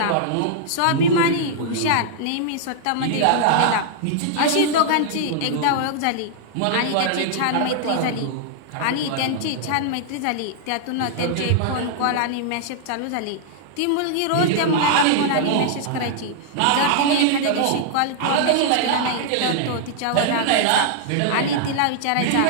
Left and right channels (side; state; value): both; different; correlation -0.01